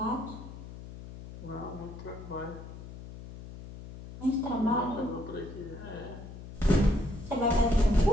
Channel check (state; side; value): noise; left; hum, 13 dB below the sound